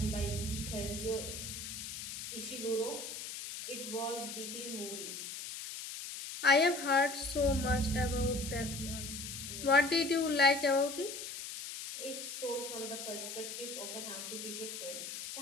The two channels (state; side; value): noise; left; hiss, 7 dB below the sound